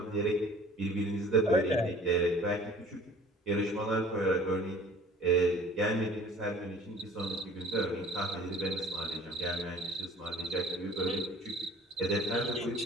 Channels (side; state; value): both; normal; correlation 0.48